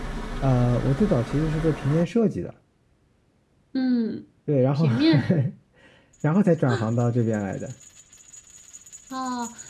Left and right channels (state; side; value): identical; both; correlation 1.00